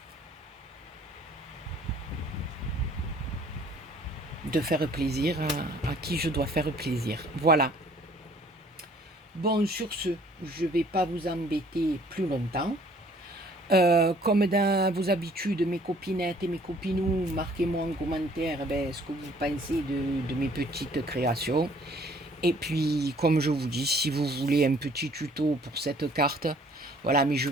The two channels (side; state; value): both; normal; correlation 0.57